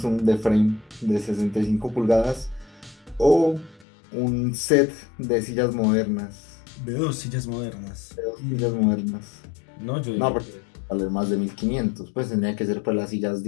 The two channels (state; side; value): drops out; right; at 3.9 s